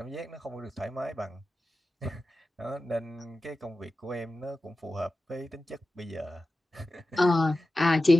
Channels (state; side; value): normal; both; correlation 0.94